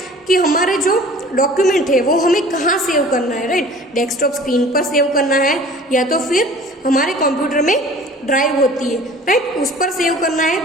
कि हमारे जो डॉक्यूमेंट है वो हमें कहाँ सेव करना है राइट, डेस्कटॉप स्क्रीन पर सेव करना है या तो फिर हमारे कंप्यूटर में ड्राइव होती है राइट, उस पर सेव करना है।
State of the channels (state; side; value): normal; both; correlation 0.46